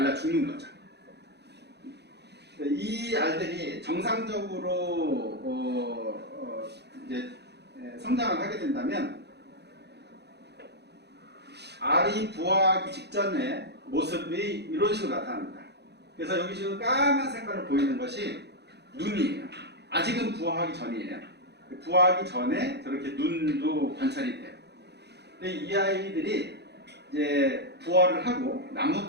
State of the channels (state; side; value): late; left; 0.49 ms